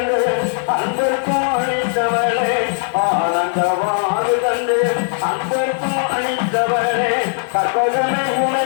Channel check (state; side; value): silent; right; digital silence